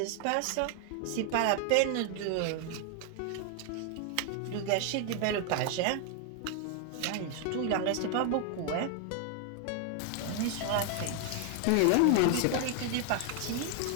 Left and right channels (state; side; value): different; both; correlation 0.00